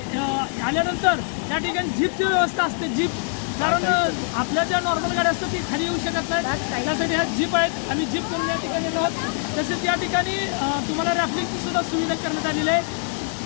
आल्यानंतर या ठिकाणी जीपची व्यवस्था असते. जीप, कारण आपल्या ज्या नॉर्मल गाड्या असतात ती खाली येऊ शकत नाही, त्यासाठी ह्या जीप आहेत. आम्ही जीप करून या ठिकाणी आहोत. तसेच या ठिकाणी तुम्हाला रॅफ्टिंगची सुद्धा सुविधा करण्यात आलेली आहे.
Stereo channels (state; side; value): silent; right; 57 dB below the other